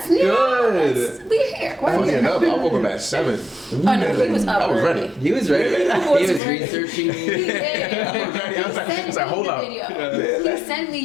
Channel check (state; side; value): drops out; right; at 6.4 s